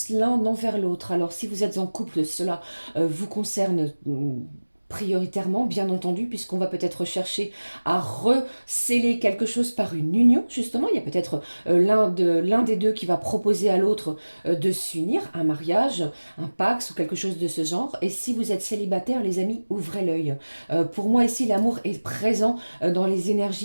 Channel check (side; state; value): both; inverted; correlation -1.00